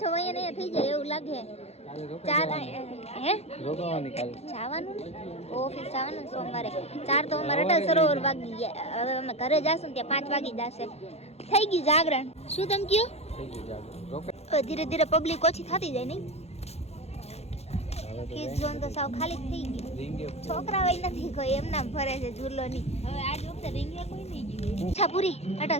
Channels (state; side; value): late; right; 0.31 ms